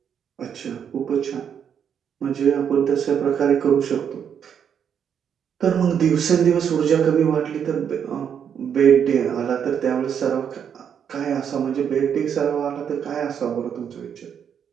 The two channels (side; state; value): left; quieter; 8.0 dB